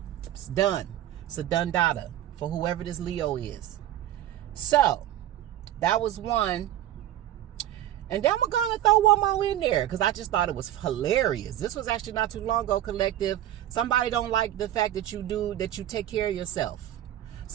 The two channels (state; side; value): quieter; left; 12.7 dB